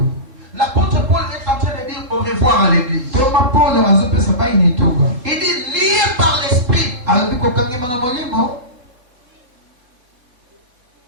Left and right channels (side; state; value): left; late; 3.8 ms